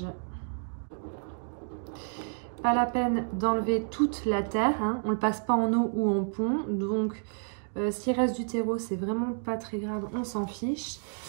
Pas la peine d'enlever toute la terre, hein. On ne le passe pas en eau ou en pont. Donc s'il reste du terreau, c'est vraiment pas très grave, on s'en fiche.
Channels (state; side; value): silent; left; digital silence